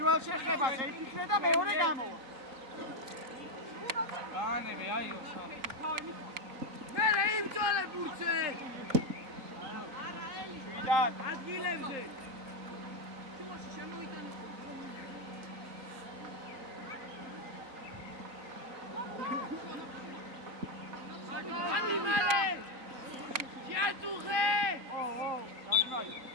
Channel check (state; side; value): late; left; 3.8 ms